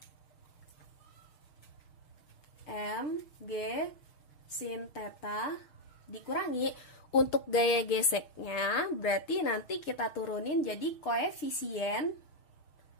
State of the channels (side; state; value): right; late; 6.4 ms